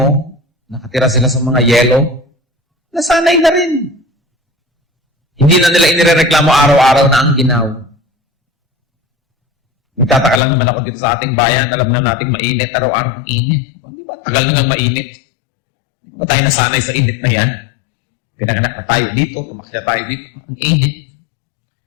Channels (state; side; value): drops out; right; at 10.4 s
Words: nakatira sila sa mga yelo, nasanay na rin. Hindi na nila inirereklamo araw-araw na ang ginaw. Nagtataka lang naman ako dito sa ating bayan, alam na nating mainit, araw-araw ang init. Di ba? Tagal na nga mainit. Di ba tayo nasanay sa init na yan? Pinanganak na tayo dito, tumakya tayo dito, ang init.